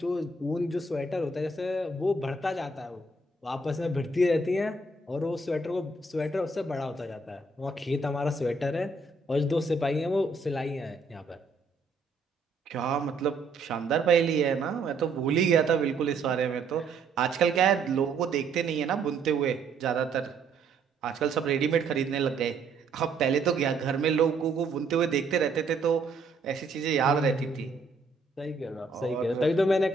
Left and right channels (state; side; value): quieter; left; 3.6 dB